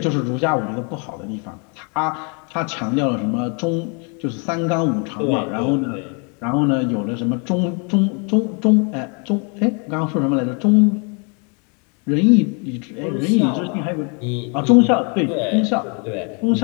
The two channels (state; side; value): quieter; right; 35.5 dB